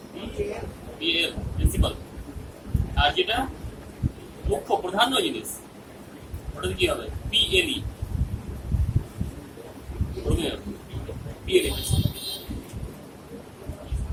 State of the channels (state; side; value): identical; both; correlation 1.00